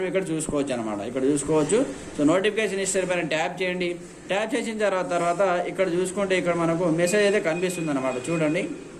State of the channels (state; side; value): identical; both; correlation 1.00